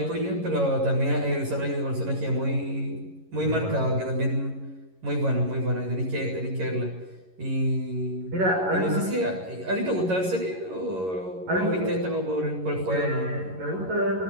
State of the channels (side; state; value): left; late; 11 ms